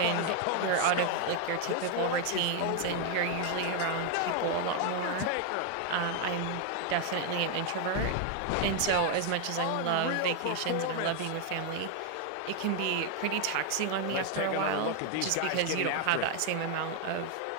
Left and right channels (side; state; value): both; different; correlation 0.01